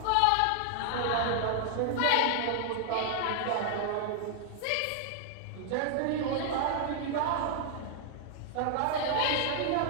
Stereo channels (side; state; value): both; different; correlation 0.00